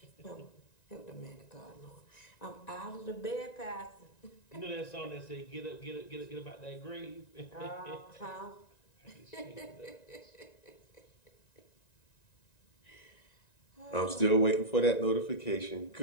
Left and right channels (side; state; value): right; late; 1.9 ms